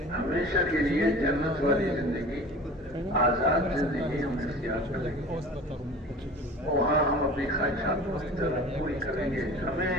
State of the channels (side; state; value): both; normal; correlation 0.40